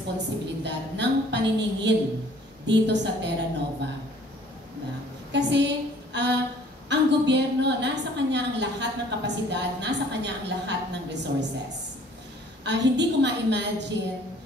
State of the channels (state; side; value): normal; both; correlation 0.55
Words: ng paniningil dito sa Terra Nova. Kasi ang gobyerno, nasa kanya ang lahat ng kapasidad, nasa kanya ang lahat ng resources. Hindi ko ma-imagine